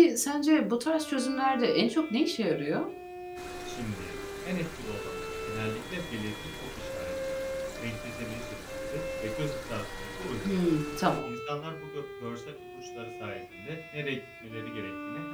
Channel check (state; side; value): identical; both; correlation 1.00